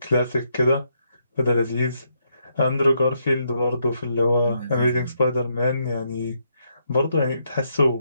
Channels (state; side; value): inverted; both; correlation -0.77